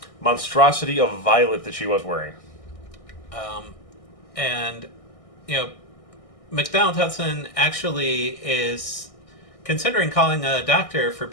monstrosity of violet that she was wearing. McDonald Hudson actually is considering calling a doctor for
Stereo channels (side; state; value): right; late; 1.6 ms